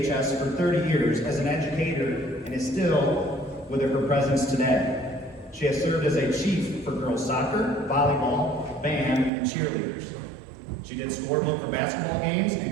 for 30 years as an educator and is still with her presence today. She has served as a chief for girls soccer, volleyball, band, and cheerleaders. She did scorebook for basketball games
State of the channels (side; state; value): left; drops out; at 9.3 s